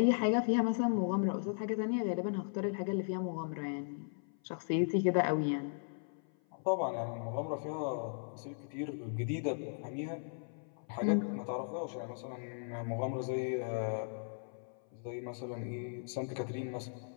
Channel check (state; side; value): silent; right; 53 dB below the other